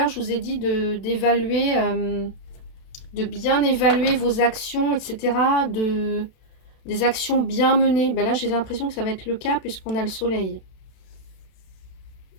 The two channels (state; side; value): late; right; 32 ms